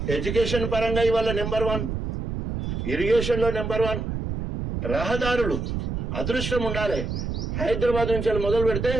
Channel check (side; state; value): right; noise; rumble, 3 dB below the sound